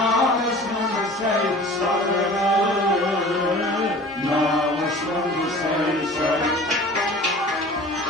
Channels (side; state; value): both; normal; correlation 0.43